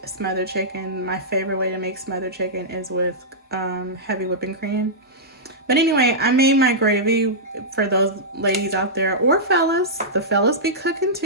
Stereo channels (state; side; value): normal; both; correlation -0.12